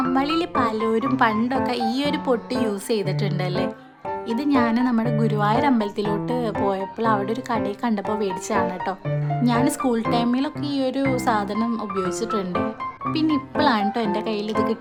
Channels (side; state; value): both; identical; correlation 1.00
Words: പലരും പണ്ടൊക്കെ ഈ ഒരു പൊട്ട് യൂസ് ചെയ്തിട്ടുണ്ടല്ലേ. ഇത് ഞാൻ നമ്മുടെ ഗുരുവായൂർ അമ്പലത്തിലോട്ട് പോയപ്പോൾ അവിടെ ഒരു കടയിൽ കണ്ടപ്പോൾ മേടിച്ചതാണ് കേട്ടോ. ഞാൻ സ്കൂൾ ടൈമിലൊക്കെ ഈ ഒരു സാധനം ഉപയോഗിച്ചിട്ടുണ്ട്. പിന്നെ ഇപ്പോഴാണ് കേട്ടോ എൻ്റെ കയ്യിൽ ഇത്